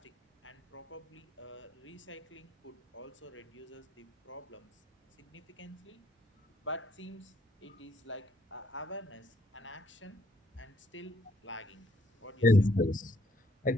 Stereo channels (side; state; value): both; normal; correlation 0.68